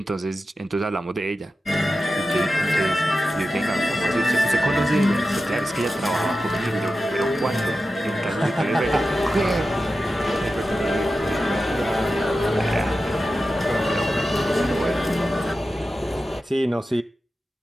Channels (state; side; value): normal; both; correlation 0.92